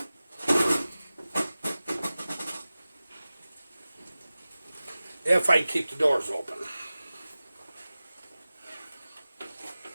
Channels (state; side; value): inverted; both; correlation -0.96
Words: If I can keep the doors open.